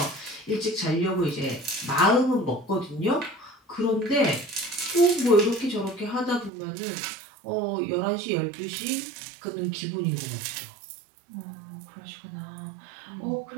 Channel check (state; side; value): drops out; left; at 6.5 s